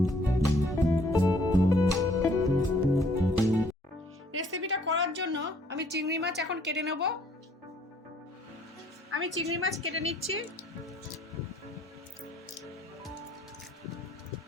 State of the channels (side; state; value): both; normal; correlation 0.62